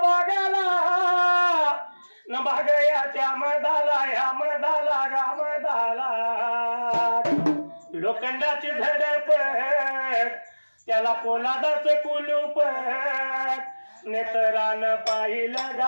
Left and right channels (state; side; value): inverted; both; correlation -1.00